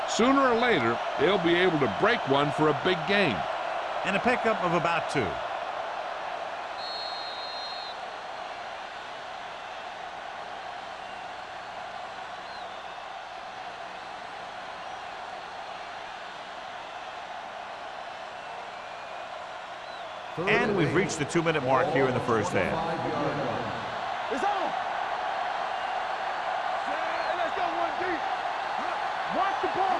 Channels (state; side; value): identical; both; correlation 1.00